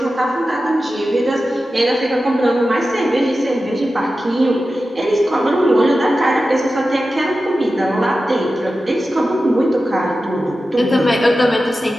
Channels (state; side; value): normal; both; correlation 0.93